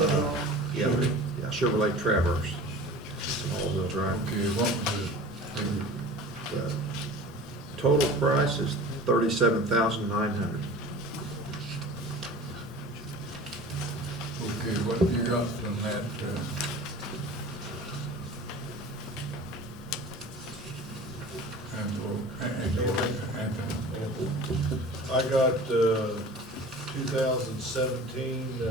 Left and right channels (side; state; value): both; normal; correlation 0.39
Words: Yeah, yeah, Chevrolet Traverse. It's an all-wheel drive. Okay, what was the, The total price is $37,900. okay, what have you got on that? Anthony. I got, 2017,